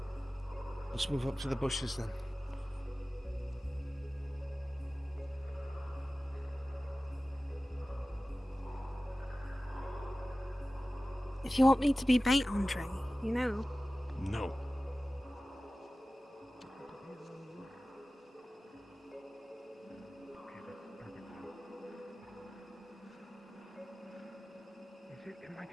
Let's move up to the bushes then. If you want me to be bait, Andre, you know. No. It might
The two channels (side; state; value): both; normal; correlation 0.97